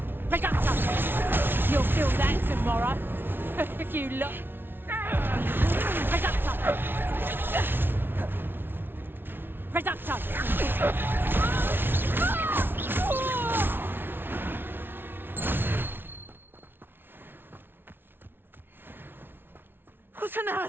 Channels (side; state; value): left; late; 0.10 ms